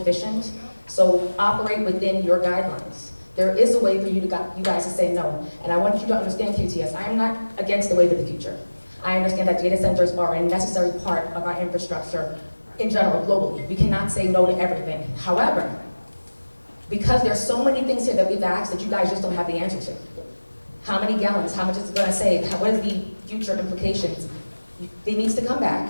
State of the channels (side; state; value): both; inverted; correlation -1.00